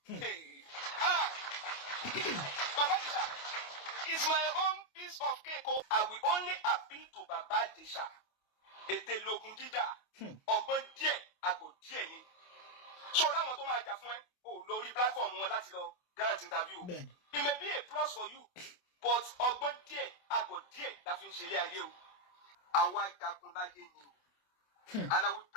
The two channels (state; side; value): late; right; 28 ms